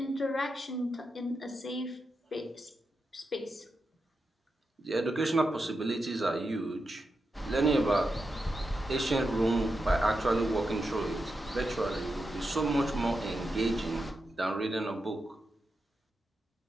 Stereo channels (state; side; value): normal; both; correlation 0.88